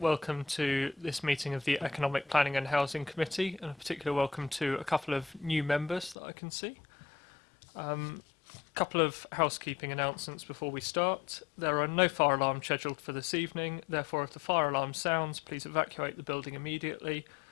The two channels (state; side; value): drops out; right; at 6.2 s